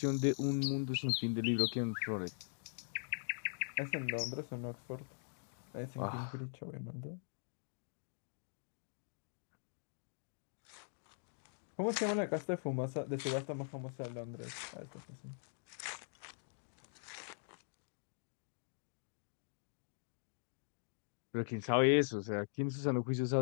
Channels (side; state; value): right; silent; digital silence